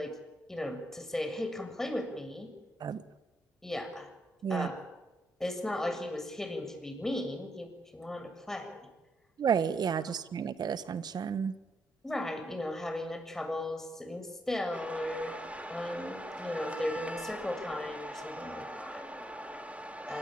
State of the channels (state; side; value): normal; both; correlation 0.77